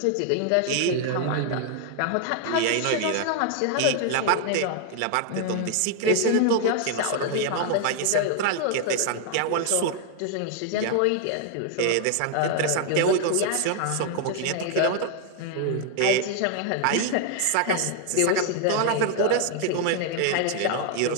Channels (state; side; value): different; both; correlation 0.00